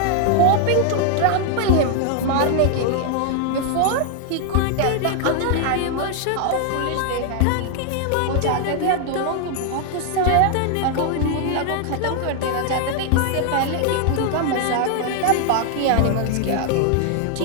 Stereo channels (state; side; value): different; both; correlation 0.00